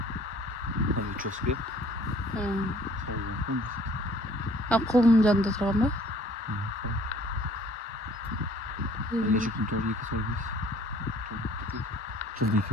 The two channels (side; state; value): both; normal; correlation 0.55